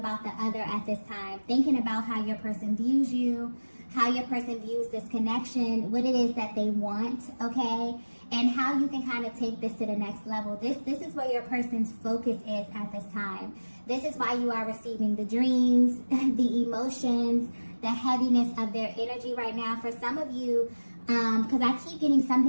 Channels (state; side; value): inverted; both; correlation -1.00